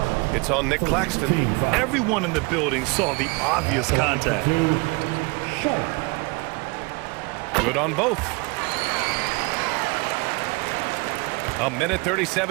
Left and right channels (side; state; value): left; quieter; 27.9 dB